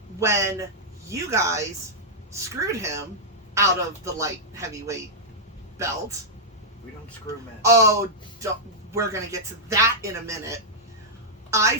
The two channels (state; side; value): normal; both; correlation -0.08